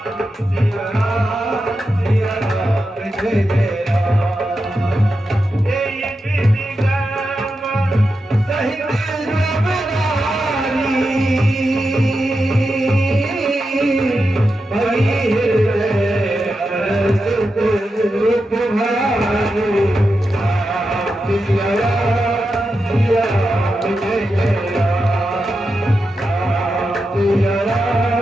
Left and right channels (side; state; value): both; normal; correlation 0.89